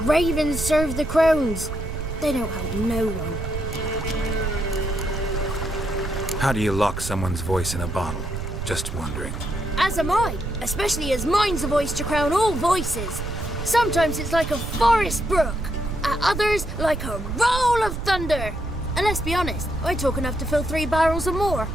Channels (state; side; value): noise; right; rumble, 6 dB below the sound